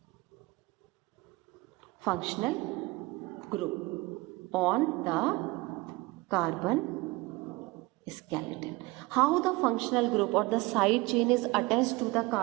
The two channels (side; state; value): left; quieter; 22.7 dB